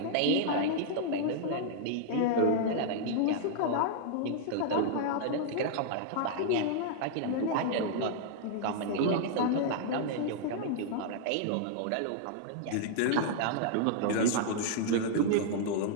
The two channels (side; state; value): both; different; correlation -0.01